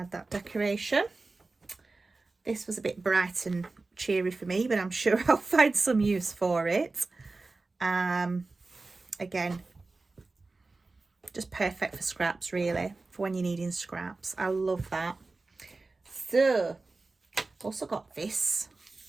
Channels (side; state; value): left; quieter; 3.6 dB